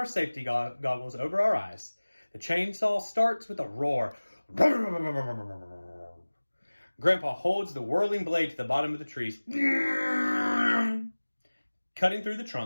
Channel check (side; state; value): both; inverted; correlation -1.00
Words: safety goggles over our eyes. The chainsaw starts with a roar. Grandpa holds the whirling blade to the bottom of the trees. Cutting through the